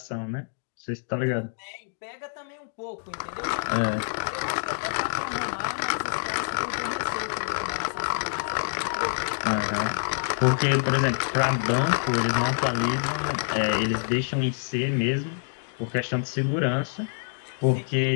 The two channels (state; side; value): silent; right; digital silence